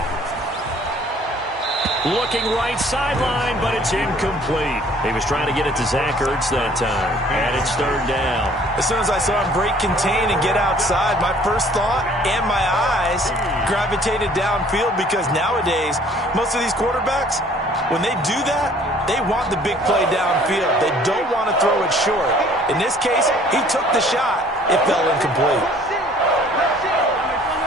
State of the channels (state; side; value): normal; both; correlation 0.55